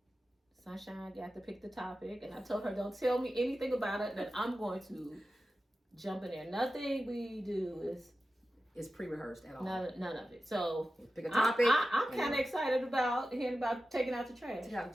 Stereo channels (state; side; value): normal; both; correlation 0.93